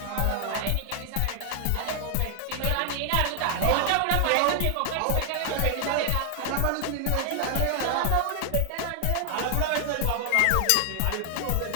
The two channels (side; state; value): both; different; correlation 0.00